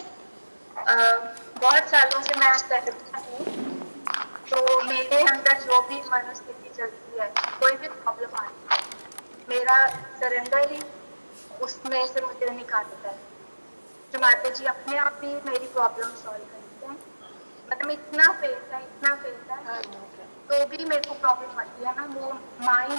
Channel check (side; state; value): both; inverted; correlation -1.00